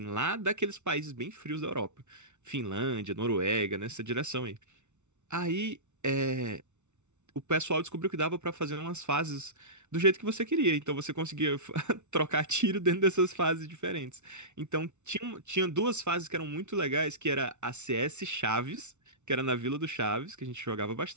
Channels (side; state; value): left; late; 0.83 ms